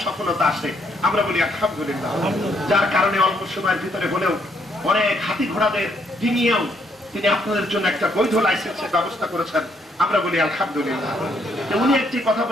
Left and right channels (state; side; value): normal; both; correlation 0.71